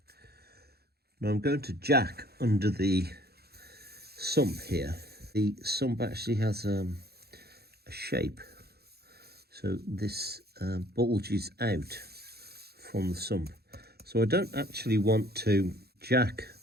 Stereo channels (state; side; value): late; left; 0.46 ms